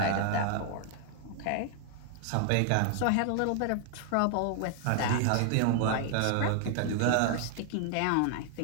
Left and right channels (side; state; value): both; different; correlation 0.00